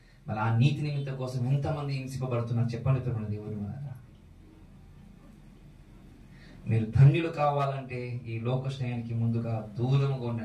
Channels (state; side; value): identical; both; correlation 1.00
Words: మరి ఆ నీతి నిమిత్తం కోసం ఎంతమంది హింసింపబడుతున్నారు చెప్పండి దేవుడు. మీరు ధన్యులు కావాలంటే ఈ లోక స్నేహానికి ముందుగా దూరముగా